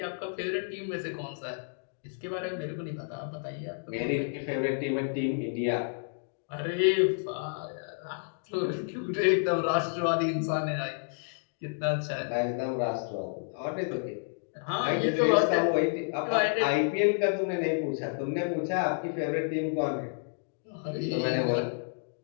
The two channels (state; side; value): silent; right; digital silence